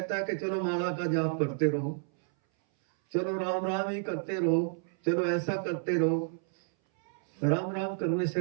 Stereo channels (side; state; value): left; silent; 58 dB below the other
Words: है कि चलो माला का जाप करते रहो, चलो राम राम ही करते रहो, चलो ऐसा करते रहो। राम राम करने से